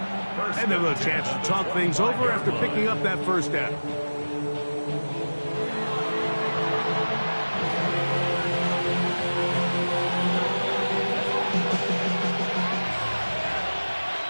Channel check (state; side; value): inverted; both; correlation -1.00